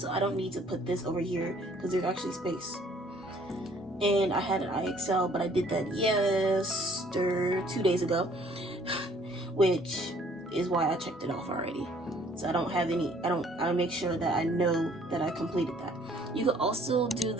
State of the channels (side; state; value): both; normal; correlation 0.59